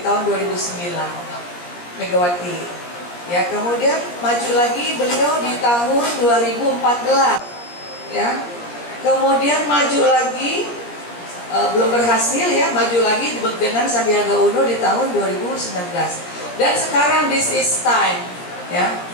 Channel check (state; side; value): late; right; 17 ms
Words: 2009, Megawati. Ya, kemudian maju lagi beliau di tahun 2014. Ya. Kemudian maju lagi belum berhasil ya, maju lagi dengan Sandiaga Uno di tahun 2019. Dan sekarang this is time, ya.